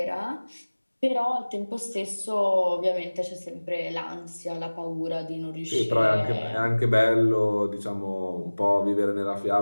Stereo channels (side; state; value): both; inverted; correlation -1.00